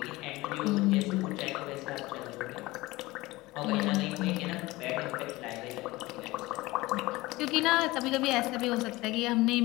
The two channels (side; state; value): right; quieter; 20.2 dB